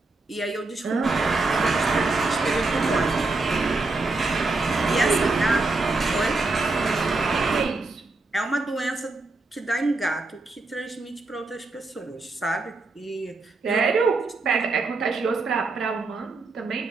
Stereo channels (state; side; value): quieter; left; 3.5 dB